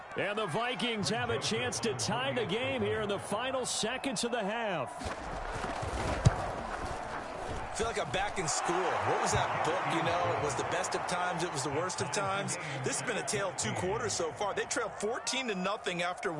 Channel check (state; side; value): identical; both; correlation 1.00